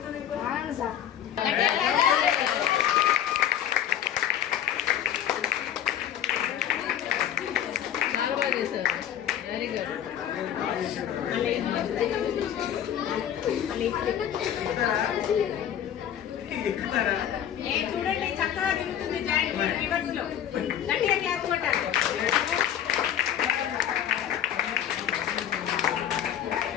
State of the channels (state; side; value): quieter; right; 10.2 dB